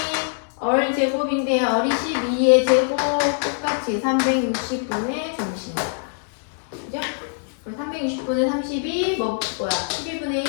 얼 제곱인데 얼이 12의 제곱 똑같이 360분의 중심각. 그죠? 그럼 360분의 30이 뭐야? 12분의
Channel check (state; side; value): silent; right; digital silence